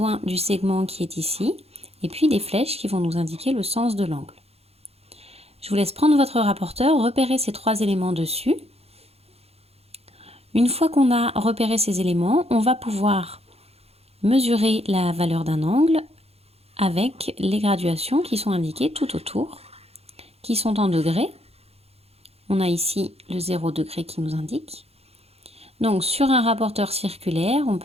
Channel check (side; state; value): left; late; 0.29 ms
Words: du segment qui est ici et puis des flèches qui vont nous indiquer le sens de l'angle. Je vous laisse prendre votre rapporteur, repérer ces trois éléments dessus. Une fois qu'on a repéré ces éléments, on va pouvoir mesurer la valeur d'un angle avec les graduations qui sont indiquées tout autour, qui sont en degrés. On a ici le 0 degré qui nous indique. Donc sur un rapporteur circulaire, on